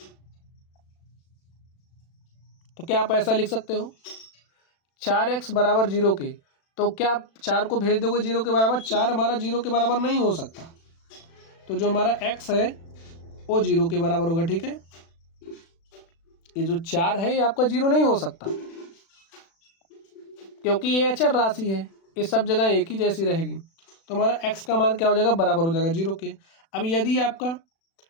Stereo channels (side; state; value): right; late; 36 ms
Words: तो क्या आप ऐसा लिख सकते हो, 4x बराबर 0 के, तो क्या आप 4 को भेज दोगे 0 के बराबर, 4 हमारा 0 के बराबर नहीं हो सकता, तो जो हमारा x है वो 0 के बराबर होगा, ठीक है। ये जो 4 है ये आपका 0 नहीं हो सकता, क्योंकि ये अचर राशि है, ये सब जगह एक ही जैसी रहेगी। तो हमारा x का मान क्या हो जाएगा, बराबर हो जाएगा 0 के। अब यदि आपका